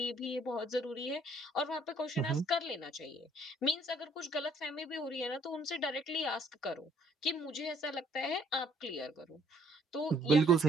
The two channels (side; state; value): both; normal; correlation 0.62